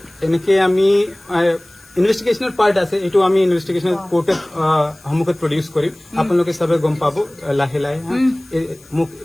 এনেকে আমি ইনভেষ্টিগেশ্যনৰ পাৰ্ট আছে এইটো আমি ইনভেষ্টিগেশ্যন কোৰ্টত সন্মুখত প্ৰডিউচ কৰিম আপোনালোকে চবে গম পাব লাহে লাহে মোক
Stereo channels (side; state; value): left; noise; hiss, 27 dB below the sound